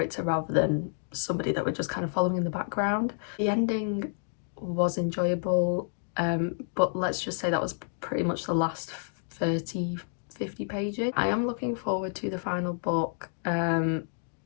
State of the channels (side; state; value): right; silent; digital silence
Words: rather than somebody that we're just kind of following in the background. The ending was enjoyable, but let's just say that was pretty much the last 30-50 pages. I am looking forward to the final book.